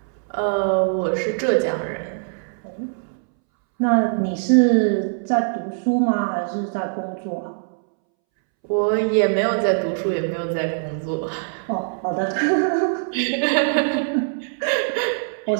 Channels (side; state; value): left; silent; 64 dB below the other